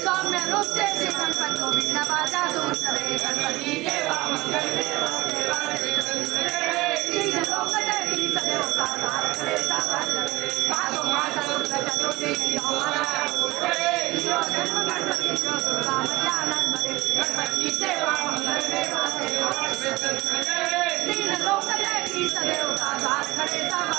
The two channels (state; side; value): quieter; left; 20.4 dB